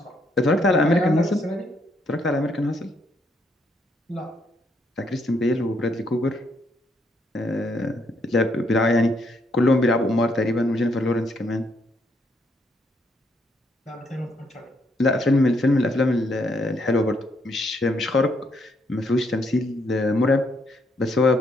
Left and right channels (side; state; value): both; normal; correlation 0.73